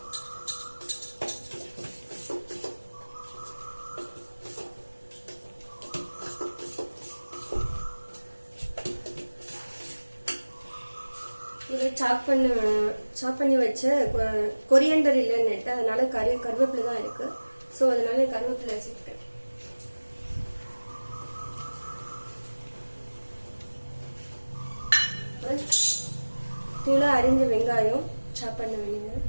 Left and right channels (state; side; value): inverted; both; correlation -1.00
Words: இது சாப் பண்ணி வச்ச கொரியண்டர் இல்லைன்னு அதனால கருவேப்பிலை தான் இருக்கு. ஸோ அதனால கருவேப்பிலை சேர்க்கிறேன். தூளா அரிஞ்ச வெங்காயம் சாப் பண்ண வேண்டியது.